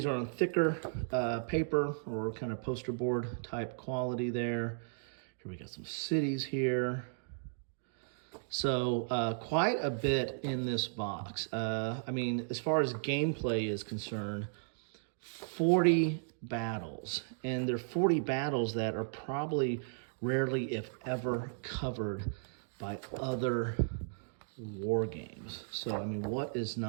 are on thicker paper or kind of poster board type quality there. Here we got some cities here. So quite a bit in this box. I mean, as far as gameplay is concerned, 40 battles. And they're 40 battles that are probably rarely, if ever, covered by other war games. So, I mean, what is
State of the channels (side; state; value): left; silent; digital silence